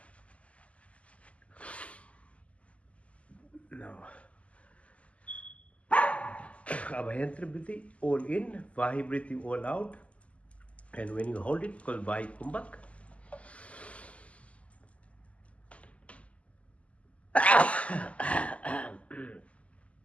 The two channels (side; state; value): right; late; 0.064 ms